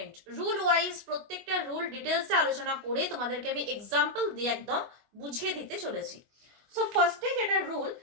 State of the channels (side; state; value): left; late; 25 ms